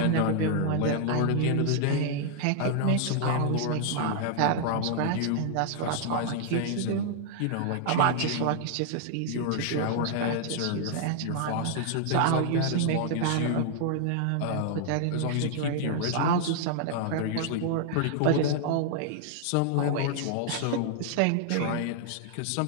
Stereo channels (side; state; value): both; different; correlation -0.01